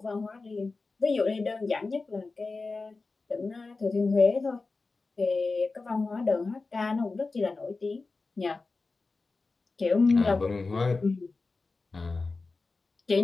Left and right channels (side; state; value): right; quieter; 3.8 dB